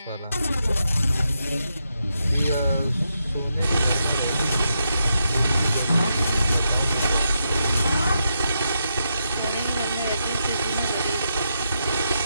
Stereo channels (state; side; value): inverted; both; correlation -0.84